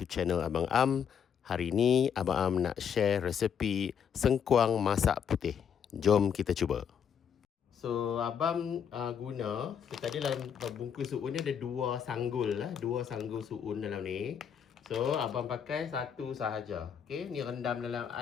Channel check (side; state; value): right; quieter; 7.8 dB